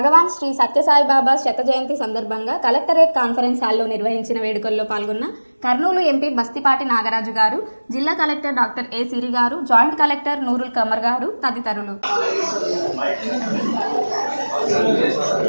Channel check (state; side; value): inverted; both; correlation -1.00